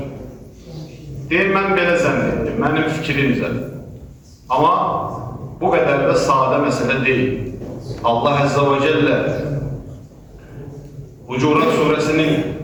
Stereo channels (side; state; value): both; identical; correlation 1.00